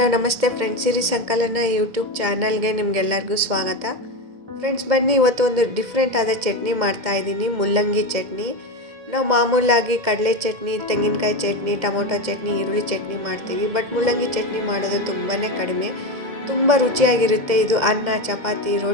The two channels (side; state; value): left; late; 2.0 ms